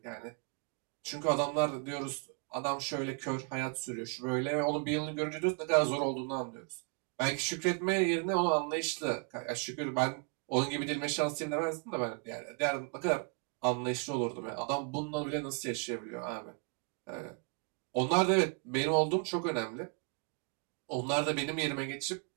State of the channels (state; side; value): quieter; left; 37.7 dB